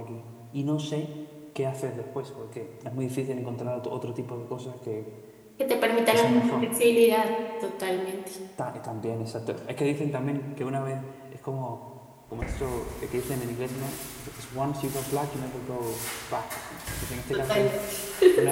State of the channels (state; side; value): identical; both; correlation 1.00